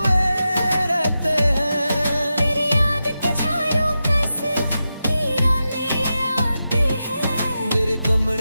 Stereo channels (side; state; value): both; inverted; correlation -0.90